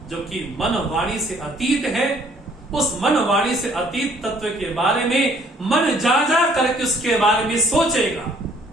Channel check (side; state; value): both; normal; correlation 0.60